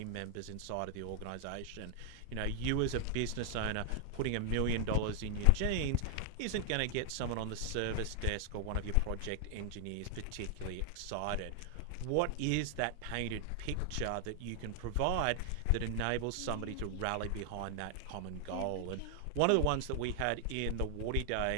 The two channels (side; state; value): both; different; correlation 0.00